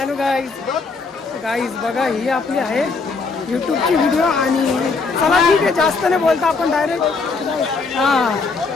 guys. Guys बघा, ही आपली आहे यूट्यूबची व्हिडिओ. आणि चला ठीक आहे, जास्त नाही बोलता आपण डायरेक्ट.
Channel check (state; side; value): quieter; right; 4.3 dB